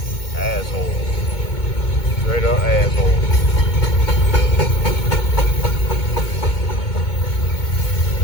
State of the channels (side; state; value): right; late; 2.2 ms